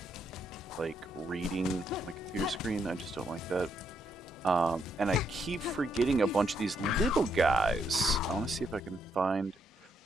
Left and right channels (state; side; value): normal; both; correlation 0.76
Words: like reading my computer screen. I just don't like that. And I keep forgetting a bunch of these little guys. I want to see if I can find,